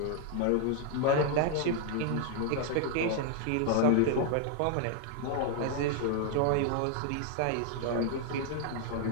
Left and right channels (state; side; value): different; both; correlation 0.00